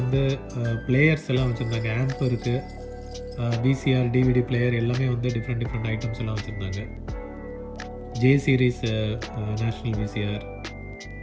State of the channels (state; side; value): identical; both; correlation 1.00